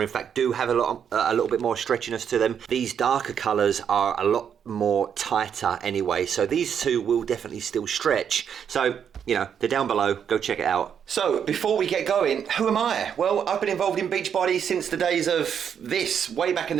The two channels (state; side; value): quieter; left; 8.0 dB